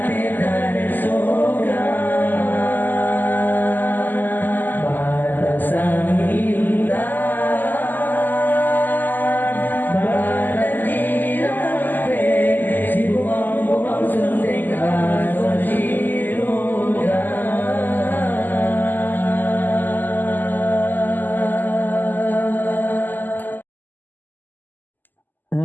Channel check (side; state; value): right; late; 0.088 ms